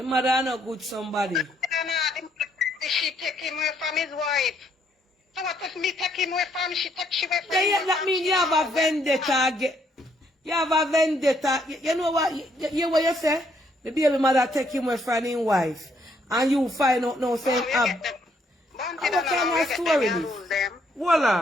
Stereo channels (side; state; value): both; normal; correlation 0.71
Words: mother not good somebody. She take him away from his wife. So what if me take him away from she take she away from Yeah, that means you have a vendetta. You have a vendetta. You know what? You what you say? The baby mother take him away from his wife. And you find out now saying, what kind of story this? Hold